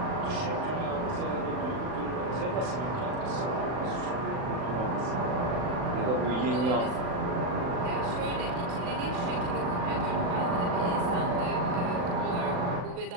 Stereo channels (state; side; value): late; left; 39 ms